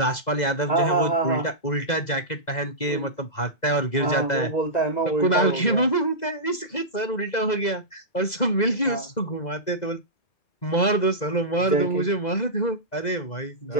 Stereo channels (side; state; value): right; late; 2.0 ms